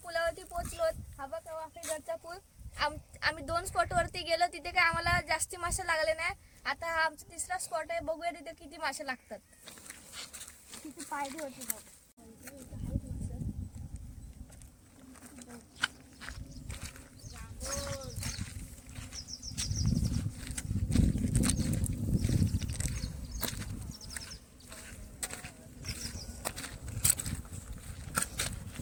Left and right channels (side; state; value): both; identical; correlation 1.00